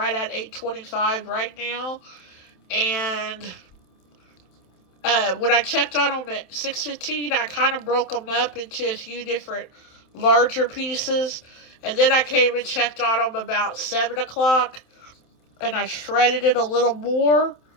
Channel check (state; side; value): late; right; 27 ms